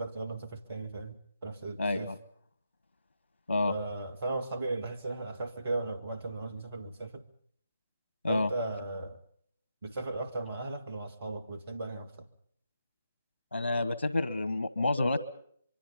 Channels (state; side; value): inverted; both; correlation -0.83